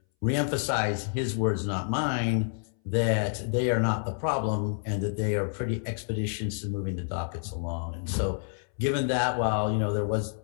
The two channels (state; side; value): silent; right; 59 dB below the other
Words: reemphasize his words, not mine, that they are not the problem and that they are pretty expeditious in moving the dockets along. And so given that, while there was